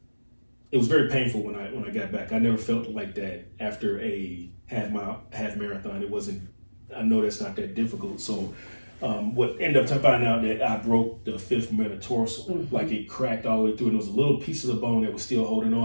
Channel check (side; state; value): both; inverted; correlation -1.00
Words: painful when I got back. I never felt like that after a half marathon. It wasn't. I know that's not that difficult. So what ended up finding out that I broke the 5th metatarsal, like it cracked all the way through, and there was a little piece of the bone that was still holding